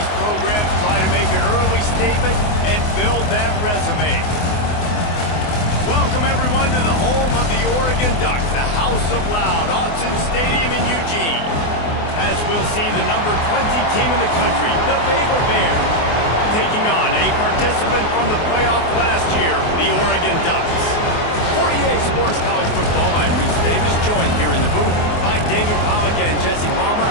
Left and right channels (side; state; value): right; late; 24 ms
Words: programs try to make an early statement and build that resume. Welcome, everyone, to the home of the Oregon Ducks, the House of Loud, Autzen Stadium in Eugene, as we'll see the number 20 team in the country, the Baylor Bears, taking on a participant from the playoff last year, the Oregon Ducks. 48 Sports College Football, I'm Reese Davis, joined here in the booth by David Pollack and Jesse Palmer.